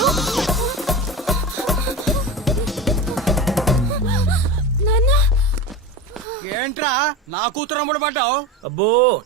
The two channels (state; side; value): normal; both; correlation 0.26